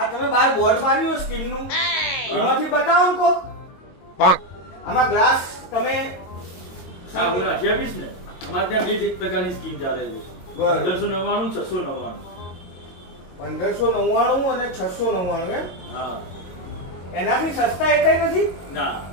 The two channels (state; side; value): late; right; 22 ms